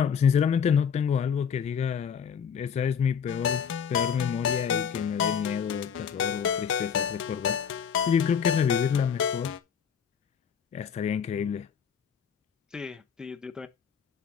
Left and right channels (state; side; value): quieter; right; 7.2 dB